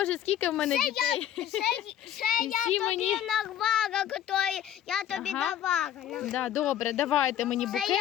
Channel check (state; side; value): quieter; right; 10.8 dB